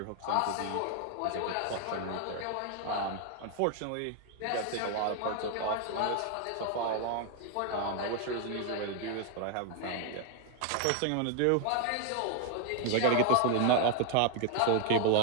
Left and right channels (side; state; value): both; different; correlation 0.00